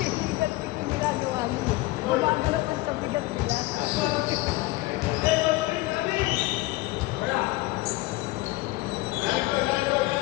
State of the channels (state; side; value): quieter; right; 19.8 dB